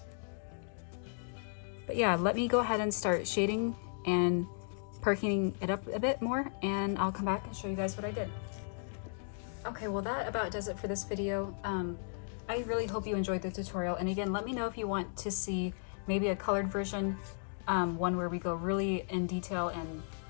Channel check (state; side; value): silent; right; digital silence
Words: But yeah, let me go ahead and start shading and perking it up a bit more, and I'll come back and show you guys what I did. Okay, well that about does it for this video. I really hope you enjoyed the tutorial, and again, let me know if you want to see maybe a colored version, one where we go really in detail, and